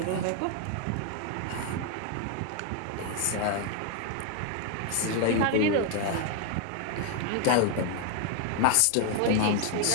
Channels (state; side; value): different; both; correlation 0.01